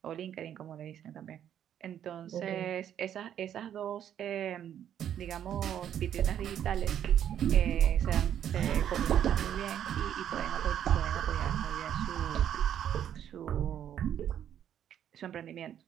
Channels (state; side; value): quieter; left; 9.9 dB